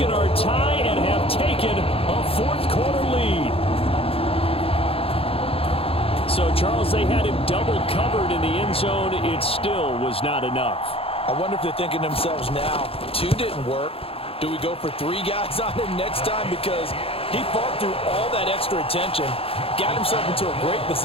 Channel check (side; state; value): right; late; 0.27 ms